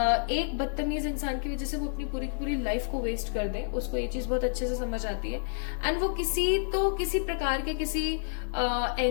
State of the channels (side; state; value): right; silent; 58 dB below the other